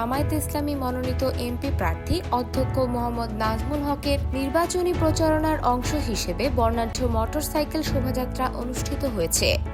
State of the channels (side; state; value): both; identical; correlation 1.00